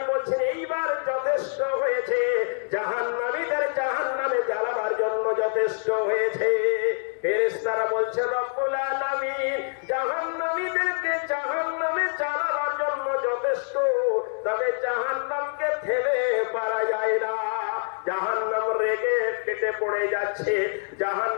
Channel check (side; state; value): right; silent; digital silence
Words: বলছেন এইবার যথেষ্ট হয়েছে, জাহান্নামীদের জাহান্নামে জ্বালাবার জন্য যথেষ্ট হয়েছে। ফেরেশতারা বলছে, রব্বুল আলামিন জাহান্নামীদেরকে জাহান্নামে জ্বালাবার জন্য যথেষ্ট, তবে জাহান্নামকে থেমে পারা যায় না, জাহান্নাম রেগে কেটে পড়ে যাচ্ছে,